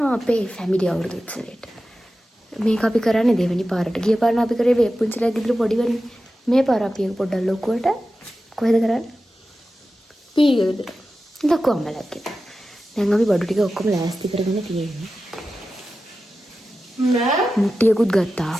අපේ ෆැමිලි අවුරුදු උත්සවයට. මේක අපි කරන්නේ දෙවෙනි පාරට. ගිය පාර අපි කරේ වේපුංචිලා ගෙදර පොඩි වෙන්නේ. මේ පාර අපි එක පොඩ්ඩක් ලොකුවට කොහෙද කරන්නේ? ඊගෙදර. ලොකු අම්මලාගේ. දැන් අපි බඩු ටික ඔක්කොම ලෑස්ති කරගෙන තියෙන්නේ. නෑ මුට්ටියකුත් ගත්තා.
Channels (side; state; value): both; normal; correlation 0.93